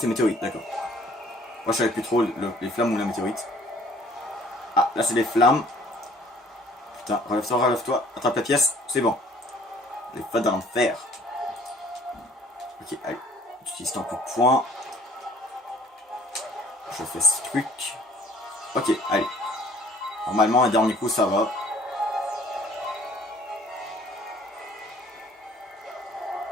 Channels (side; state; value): both; normal; correlation 0.56